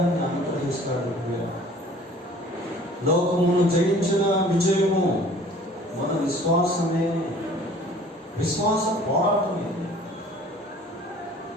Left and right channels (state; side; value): normal; both; correlation 0.50